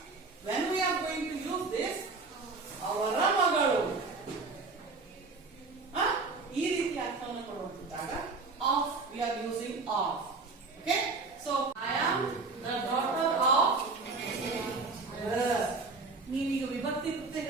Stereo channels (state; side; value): quieter; left; 4.0 dB